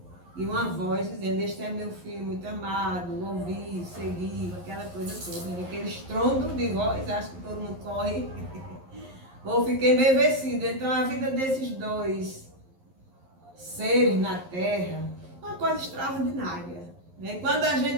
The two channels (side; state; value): left; late; 11 ms